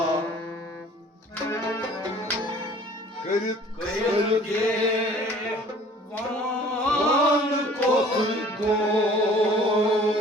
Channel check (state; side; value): normal; both; correlation 0.51